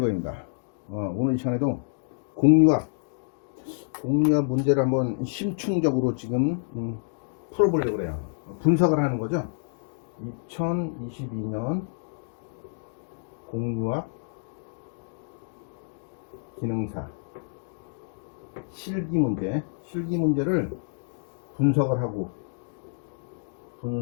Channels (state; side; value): silent; right; digital silence